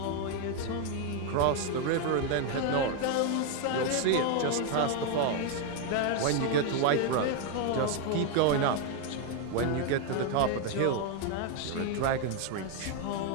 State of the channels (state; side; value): different; both; correlation 0.01